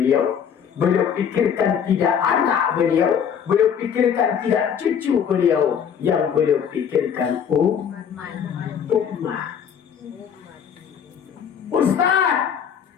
beliau pikirkan tidak anak beliau, beliau pikirkan tidak cucu beliau, yang beliau pikirkan umat. Ustaz,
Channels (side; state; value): right; quieter; 7.9 dB